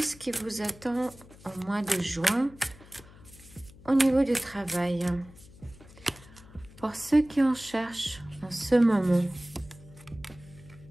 qui vous attend au mois de juin au niveau du travail? Pour ceux qui en cherchent en ce moment,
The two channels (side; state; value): left; noise; hum, 22 dB below the sound